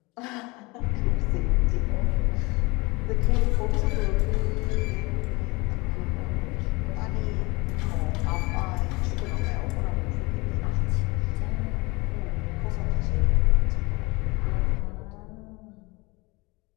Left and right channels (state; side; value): quieter; right; 24.7 dB